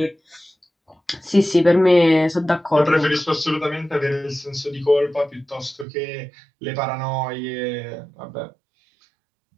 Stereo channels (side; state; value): left; drops out; at 5.9 s